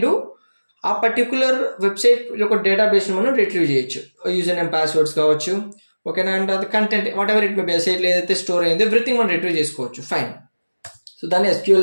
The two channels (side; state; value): both; inverted; correlation -1.00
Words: డూ, ఆ పర్టికులర్ వెబ్సైట్ యొక్క డేటాబేస్ని మనం రిట్రీవ్ చేయొచ్చు. యూజర్ నేమ్, పాస్వర్డ్స్ కావచ్చు, ఓకేనా, అండ్ అది content what ever it may be, సైట్లో ఏదైతే స్టోర్ అయిందో ఎవ్రీథింగ్ మనం రిట్రీవ్ చేసుకోవచ్చు, ఫైన్. సో దాన్ని